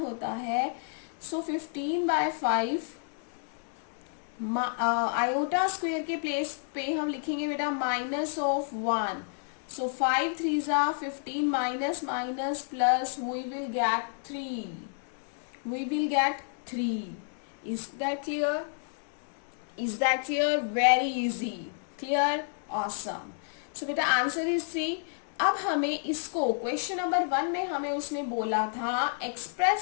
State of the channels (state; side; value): silent; right; digital silence